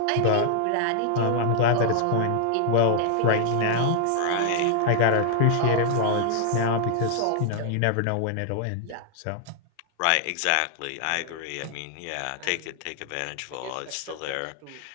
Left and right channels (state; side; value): different; both; correlation 0.00